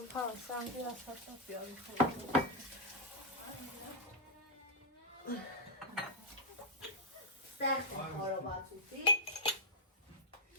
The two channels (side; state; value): both; normal; correlation -0.07